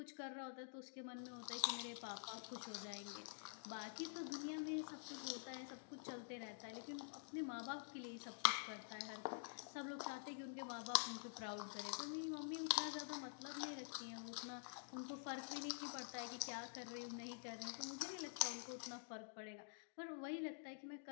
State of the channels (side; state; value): right; silent; digital silence